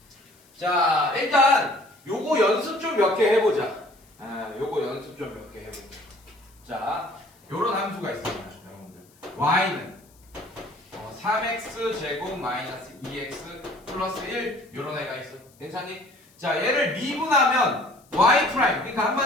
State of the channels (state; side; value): noise; left; hiss, 30 dB below the sound